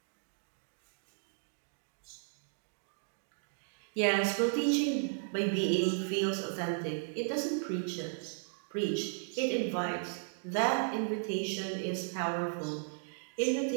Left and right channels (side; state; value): left; silent; digital silence